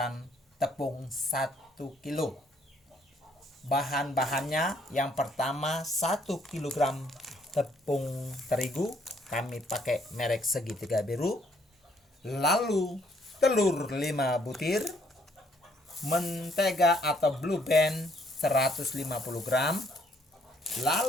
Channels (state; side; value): normal; both; correlation 0.66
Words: tepung 1 kilo. Bahan-bahannya yang pertama 1 kg tepung terigu, kami pakai merek segitiga biru. Lalu telur 5 butir, mentega atau Blue Band 150 gram.